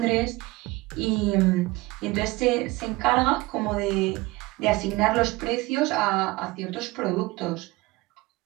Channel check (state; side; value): quieter; left; 21.6 dB